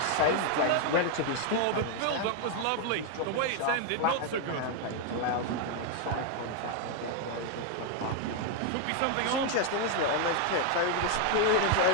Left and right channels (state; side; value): different; both; correlation 0.00